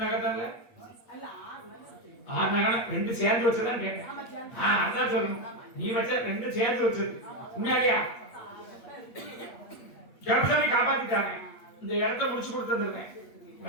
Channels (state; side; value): late; right; 8.4 ms